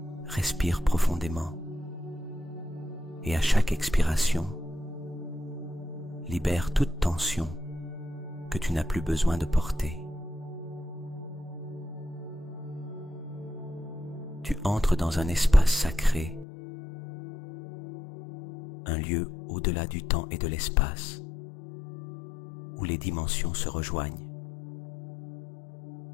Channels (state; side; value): drops out; right; at 16.4 s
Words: Respire profondément et à chaque expiration, libère toute tension que tu n'as plus besoin de porter. Tu entres dans un espace sacré, un lieu au-delà du temps et de l'espace, où les dimensions se rejoignent,